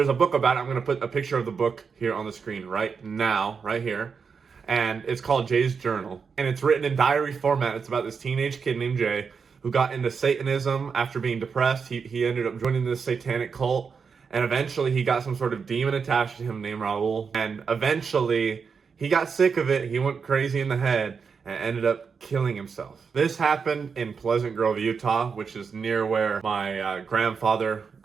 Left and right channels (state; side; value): quieter; left; 5.8 dB